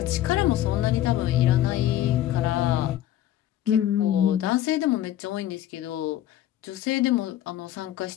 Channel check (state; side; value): quieter; right; 12.7 dB